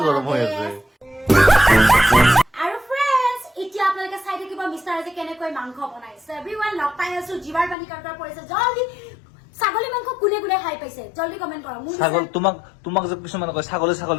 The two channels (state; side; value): drops out; right; at 7.8 s